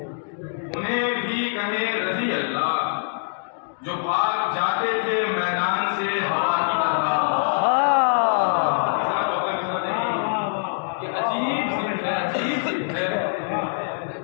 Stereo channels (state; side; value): silent; right; digital silence